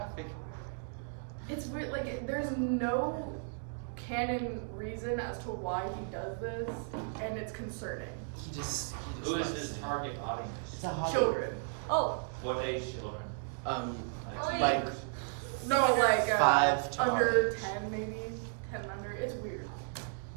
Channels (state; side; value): silent; left; digital silence